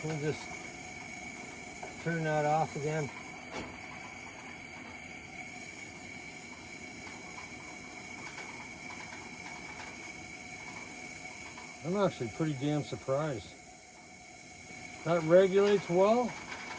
We'll just turn that off again. I'm actually pretty damn surprised. That regulates well.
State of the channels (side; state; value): both; identical; correlation 1.00